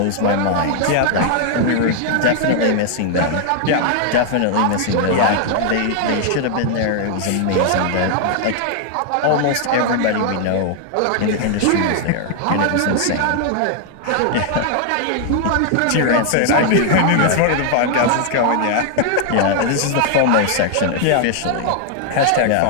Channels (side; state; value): both; different; correlation 0.00